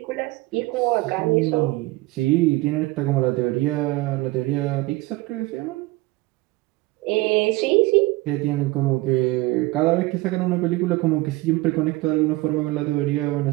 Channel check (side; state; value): left; quieter; 20.3 dB